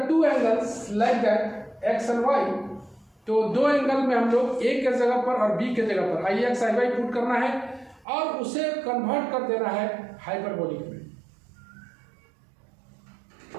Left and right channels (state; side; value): drops out; left; at 8.1 s